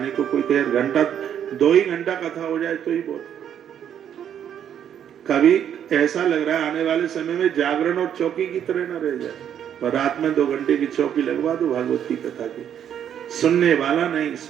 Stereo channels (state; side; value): quieter; left; 9.3 dB